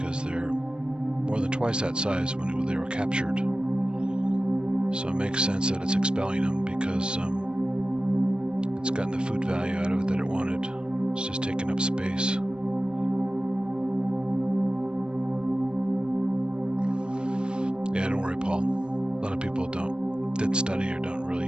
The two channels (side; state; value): left; late; 0.050 ms